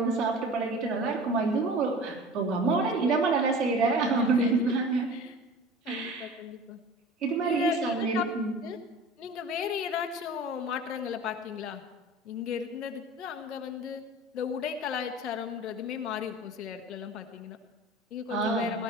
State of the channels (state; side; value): normal; both; correlation 0.39